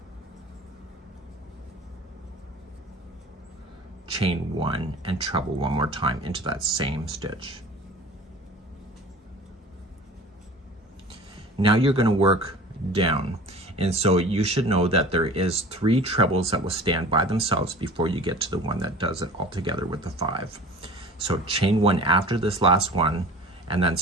Chain 1 and treble one more time into that same stitch. Now you're going to work down, and so you should know that there is 3 trebles that will stand by themselves before you get to the one that does it all together with the 5. So chain 1 after this last one, and then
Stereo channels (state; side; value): normal; both; correlation 0.41